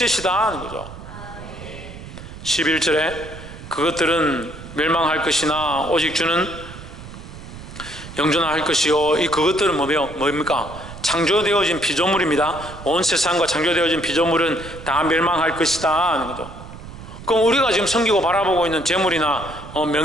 하는 거죠. 11절에 그것들은 멸망할 것이나 오직 주는 영존할 것이요. 이 그것들은 뭡니까? 창조되어진 피조물입니다. 온 세상과 창조되어진 피조물은 다 멸망할 것이다 하는 거죠. 그럼 우리가 지금 섬기고 바라보고 있는 재물이나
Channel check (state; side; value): noise; right; rumble, 14 dB below the sound